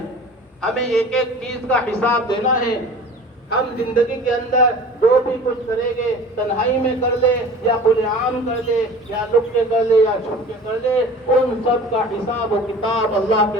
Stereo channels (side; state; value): both; normal; correlation 0.42